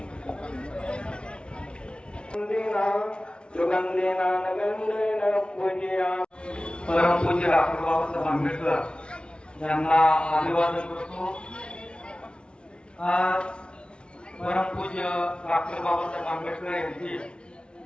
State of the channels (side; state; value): right; late; 0.057 ms